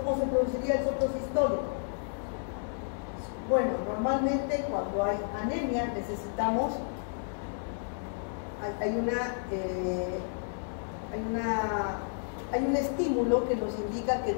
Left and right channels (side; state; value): right; silent; digital silence